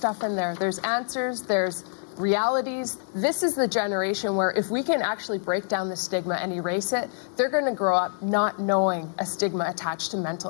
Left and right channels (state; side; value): silent; right; 61 dB below the other